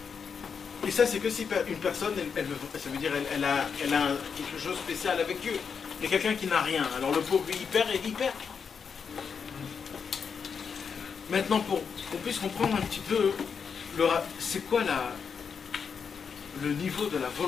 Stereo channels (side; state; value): right; quieter; 6.3 dB